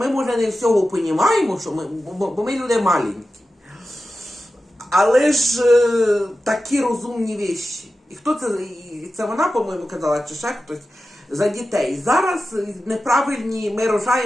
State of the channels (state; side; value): normal; both; correlation 0.93